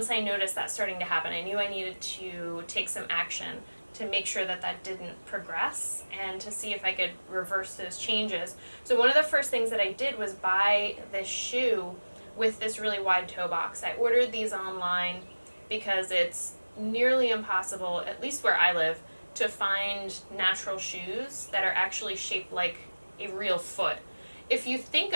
I noticed that starting to happen, I knew I needed to take some action to make sure that that didn't progress and to see if I could reverse those changes. So one of the first things that I did was buy this shoe with this really wide toe box. I ordered these online because it's nearly impossible, at least where I live, to find natural shoes that are actually shaped like a real foot. If you think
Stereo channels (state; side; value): inverted; both; correlation -1.00